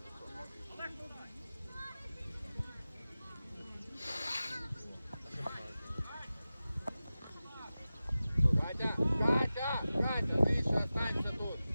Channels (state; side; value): inverted; both; correlation -0.95